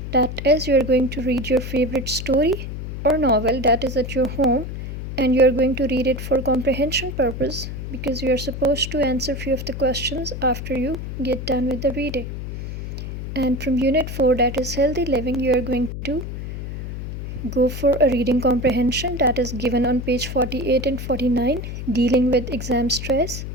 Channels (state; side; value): noise; left; hum, 7 dB below the sound